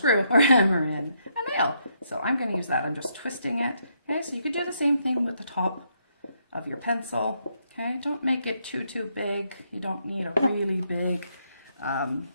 or hammer in a nail. So I'm going to use that. I'm just twisting it. Okay, so you could do the same thing with the top of your pencil. Okay, don't make it too big. You don't need a really big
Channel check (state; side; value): inverted; both; correlation -0.76